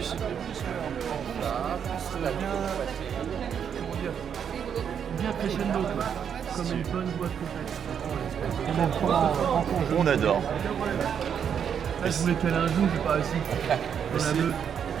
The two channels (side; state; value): left; quieter; 7.9 dB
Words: Bien crescendo, quoi. Comme une bonne boîte complète. On adore. Là, je voulais caler un jour, j'ai pas réussi. On a deux,